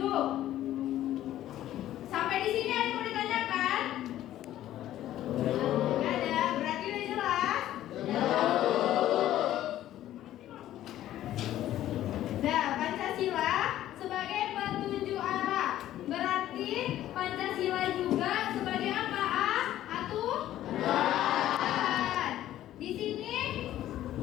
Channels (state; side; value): quieter; right; 13.1 dB